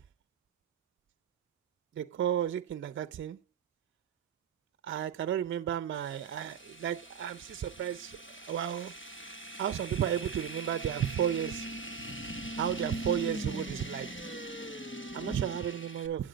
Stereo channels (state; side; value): quieter; left; 7.9 dB